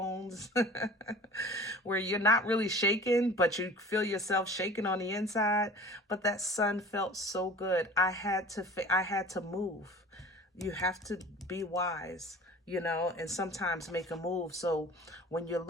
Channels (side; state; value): both; normal; correlation 0.43